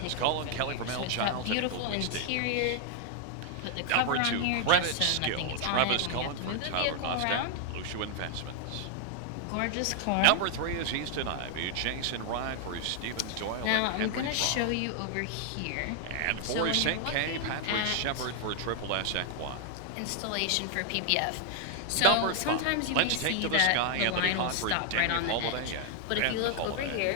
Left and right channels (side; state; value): both; different; correlation 0.00